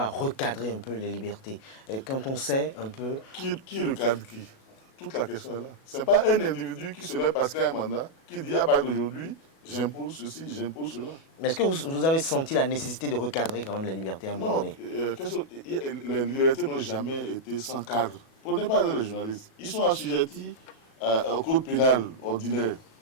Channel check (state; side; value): late; right; 37 ms